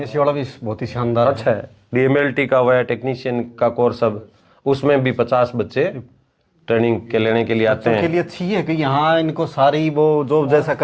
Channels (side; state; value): both; identical; correlation 1.00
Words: वाला भी बहुत ही शानदार अच्छा है। डीएमएलटी का हुआ है, टेक्नीशियन का कोर्स, अब उसमें भी 50 बच्चे ट्रेनिंग के लेने के लिए आते हैं। के लिए अच्छी है कि यहाँ इनको सारी वो जो जैसा